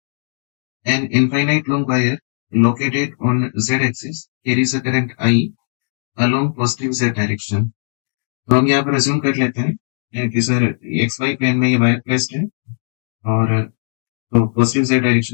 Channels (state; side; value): silent; right; digital silence